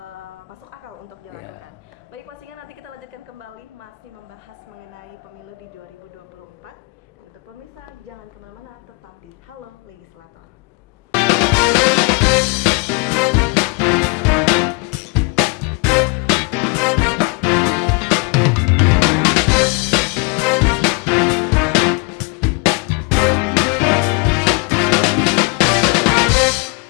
masuk akal untuk dilakukan. Baik Pak Singa, nanti kita lanjutkan kembali masih membahas mengenai pemilu di 2024. Dan untuk pemirsa, jangan kemana-mana, tetap di Halo Legislator.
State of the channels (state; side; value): quieter; right; 30.9 dB